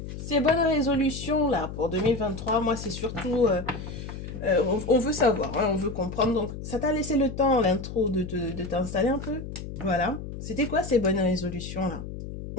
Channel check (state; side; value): noise; left; hum, 9 dB below the sound